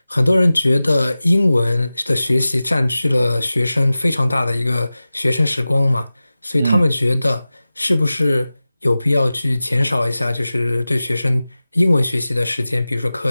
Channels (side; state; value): both; inverted; correlation -0.96